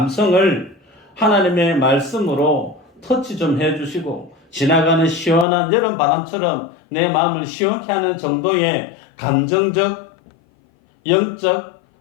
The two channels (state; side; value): drops out; right; at 5.5 s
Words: 하나님의 말씀으로 터치 좀 해주시고 지나가는 시원한 여름 바람처럼 내 마음을 시원케 하는 정도의 감정적, 영적